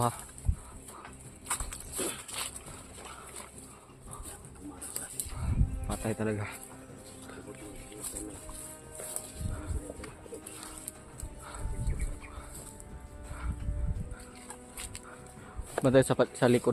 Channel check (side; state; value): both; identical; correlation 1.00